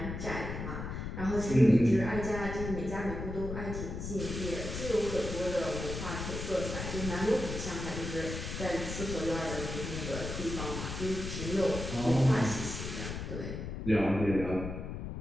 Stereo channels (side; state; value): left; noise; rumble, 6 dB below the sound